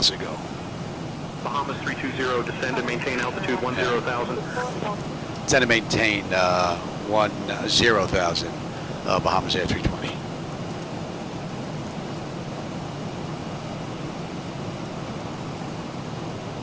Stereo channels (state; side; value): identical; both; correlation 1.00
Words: to go. Bahamas 320, descend and maintain altitude 10,000. Descend and maintain 10,000, Bahamasair 320.